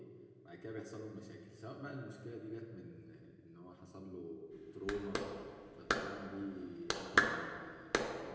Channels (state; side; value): identical; both; correlation 1.00